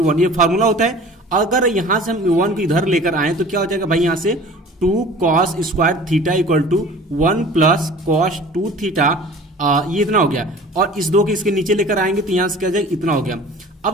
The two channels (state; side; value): normal; both; correlation 0.44